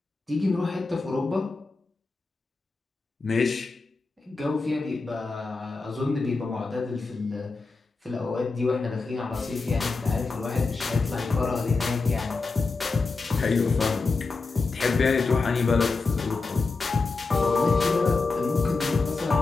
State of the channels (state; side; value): quieter; right; 4.0 dB